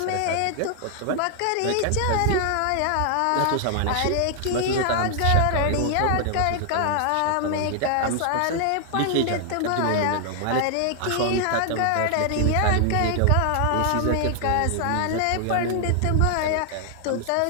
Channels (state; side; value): different; both; correlation 0.00